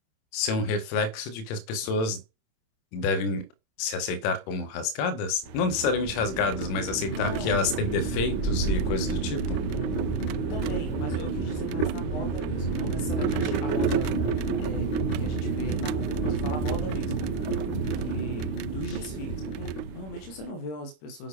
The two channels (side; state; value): right; late; 26 ms